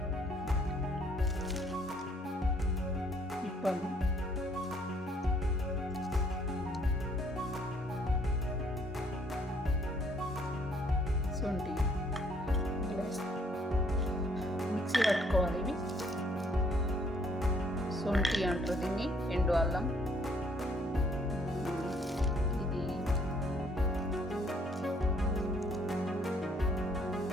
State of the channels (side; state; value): both; normal; correlation 0.65